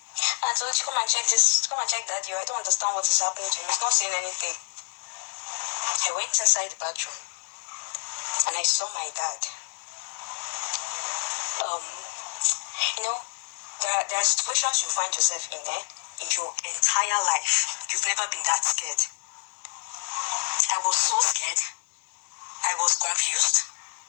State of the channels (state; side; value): silent; right; 60 dB below the other